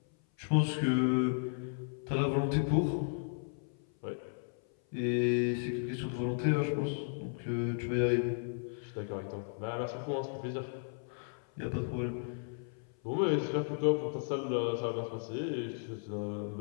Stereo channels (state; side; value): silent; right; 55 dB below the other